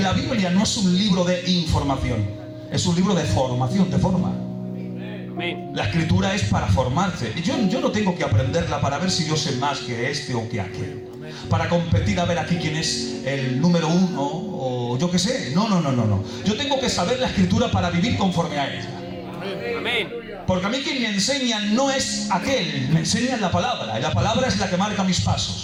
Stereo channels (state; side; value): identical; both; correlation 1.00